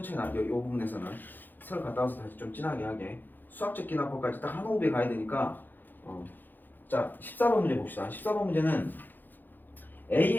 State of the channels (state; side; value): late; right; 0.089 ms